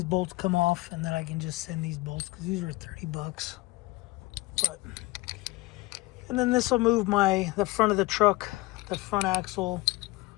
bolts come off and that I can just send these bolts, because these were $30. But, and then this will move the front of the truck, the front axle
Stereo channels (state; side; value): quieter; right; 21.4 dB